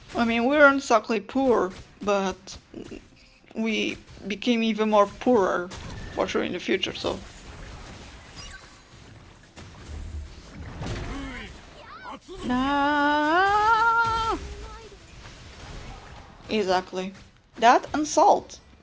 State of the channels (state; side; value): identical; both; correlation 1.00